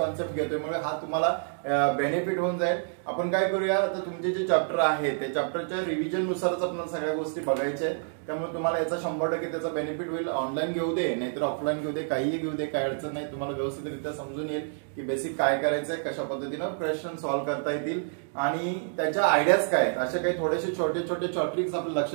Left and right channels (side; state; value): left; silent; digital silence